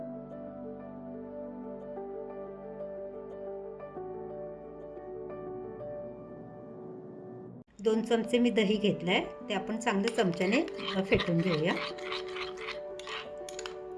दोन चमचे मी दही घेतलंय, ते आपण चांगलं चमच्याने फेटून घेऊया।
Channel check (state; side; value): identical; both; correlation 1.00